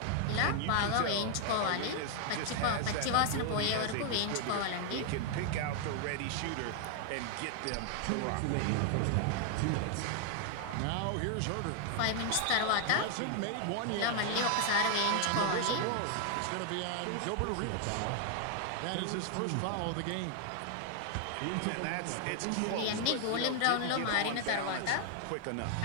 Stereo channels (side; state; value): both; different; correlation 0.00